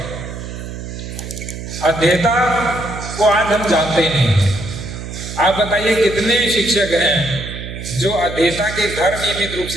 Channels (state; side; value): noise; right; hum, 9 dB below the sound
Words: अध्येता को आज हम जानते ही नहीं। आप बताइए कितने शिक्षक हैं जो अध्येता के घर नियमित रूप